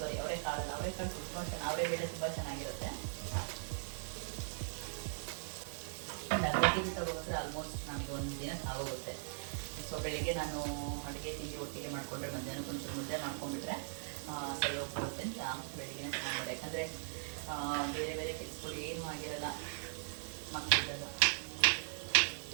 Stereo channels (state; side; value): silent; left; 52 dB below the other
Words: ತುಂಬ ಅವರೆಬೇಳೆ ತುಂಬ ಚೆನ್ನಾಗಿರುತ್ತೆ. ಒಂದು ಅರ್ಧ ಕೆಜಿ ತಗೋಬಂದರೆ ಆಲ್ಮೋಸ್ಟ್ ನಮಗೆ ಒಂದು ದಿನ ಆಗೋಗುತ್ತೆ. ಸೊ ಬೆಳಿಗ್ಗೆ ನಾನು ಅಡುಗೆ ತಿಂಡಿ ಒಟ್ಟಿಗೆ ಮಾಡಿಕೊಂಡ್ರೆ ಮಧ್ಯಾಹ್ನಕ್ಕೆ ಒಂಚೂರು ಮುದ್ದೆ ಮಾಡ್ಕೊಂಡ್ಬಿಟ್ರೆ ಸರಿ ಹೋಗ್ಬಿಡುತ್ತೆ ಅಂತ ಬೆಳಿಗ್ಗೆ ಸಾಂಬಾರು. ಯಾಕಂದರೆ ಬೇರೆ ಬೇರೆ ಕೆಲಸಗಳು ಏನೂ ಆಗಿರಲ್ಲ ಮಕ್ಕಳಿಗೆಲ್ಲ.